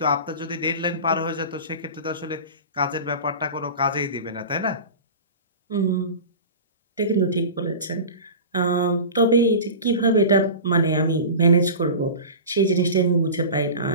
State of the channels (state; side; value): inverted; both; correlation -0.33